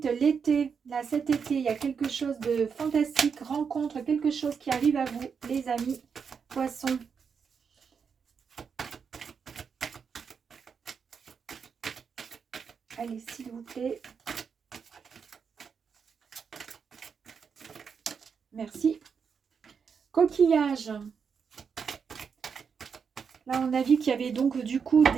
l'été, là, cet été, il y a quelque chose de fantastique, rencontre, quelque chose qui arrive à vous, les amis, poissons. Allez, s'il vous plaît. Merci. Coquillage. Là, on a vu qu'il y avait donc du coup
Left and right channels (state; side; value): quieter; left; 6.3 dB